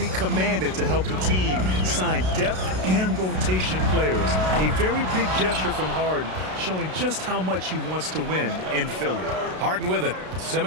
commanded to help the team sign depth and rotation players. A very big gesture from Harden, showing just how much he wants to win in Philly. Harden with it.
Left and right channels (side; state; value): left; late; 32 ms